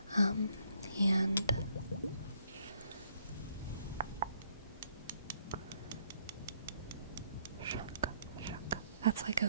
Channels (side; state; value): both; inverted; correlation -0.68